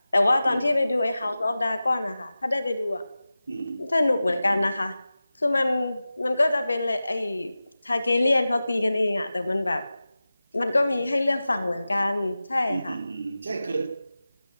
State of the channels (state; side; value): inverted; both; correlation -0.95